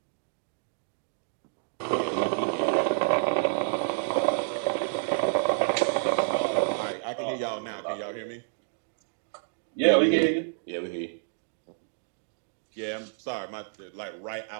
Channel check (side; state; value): left; silent; digital silence